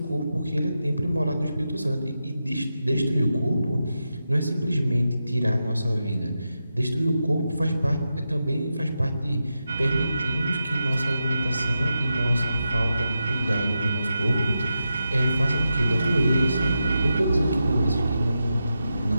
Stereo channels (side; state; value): both; inverted; correlation -0.88